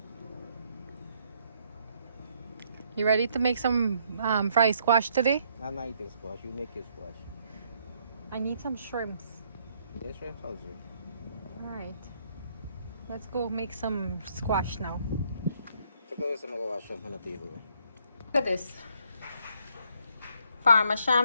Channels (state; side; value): inverted; both; correlation -0.69